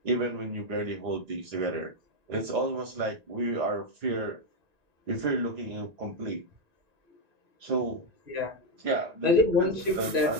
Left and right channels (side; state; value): left; late; 1.9 ms